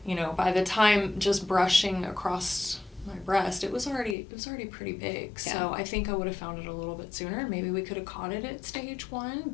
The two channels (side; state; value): right; drops out; at 4.2 s